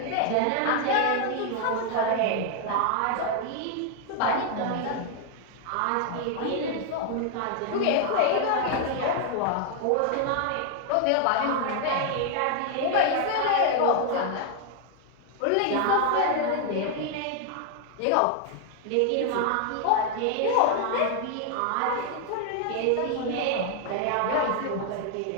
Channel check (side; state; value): both; different; correlation 0.00